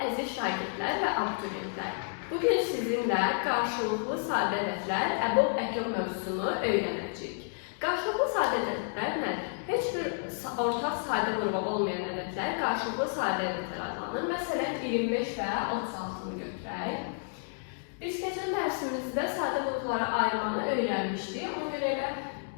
əziz şagirdlər və abituriyentlər. Bugün sizinlə qarşılıqlı sadə ədədlər, əbob əkyob mövzusunu öyrənəcəyik. Qarşılıqlı sadə ədədlər nədir? Heç bir ortaq sadə qrupu olmayan ədədlər qarşılıqlı sadə ədədlər adlanır. Məsələn, 25 və 36-nı götürək. Biz keçən dərsimizdə sadə qruplara ayırmanı öyrənmişdik. Ona görə elə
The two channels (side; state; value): right; silent; digital silence